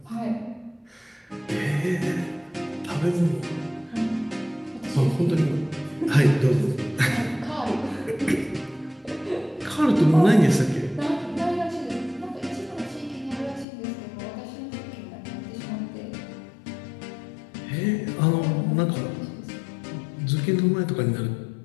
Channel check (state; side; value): drops out; right; at 13.7 s